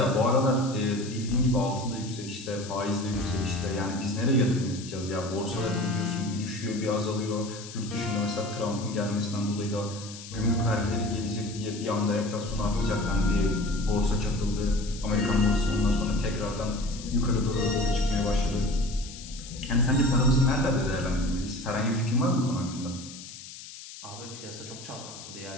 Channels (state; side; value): noise; left; hiss, 14 dB below the sound